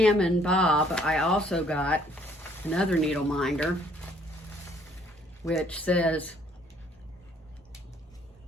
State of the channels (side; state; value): both; normal; correlation 0.62